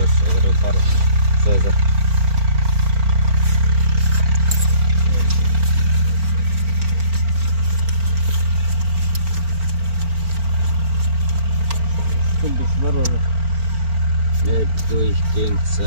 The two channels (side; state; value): left; late; 4.4 ms